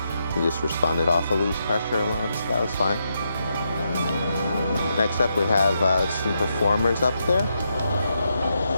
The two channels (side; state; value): both; inverted; correlation -0.81